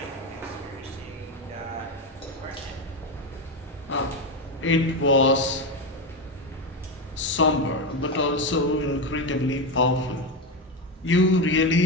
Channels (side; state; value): both; normal; correlation 0.13